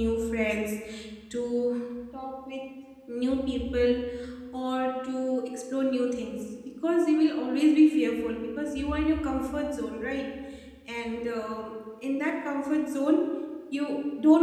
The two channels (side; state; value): both; identical; correlation 1.00